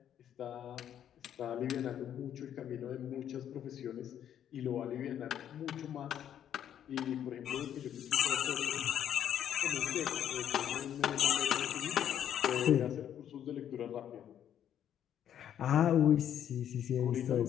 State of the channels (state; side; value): quieter; right; 10.0 dB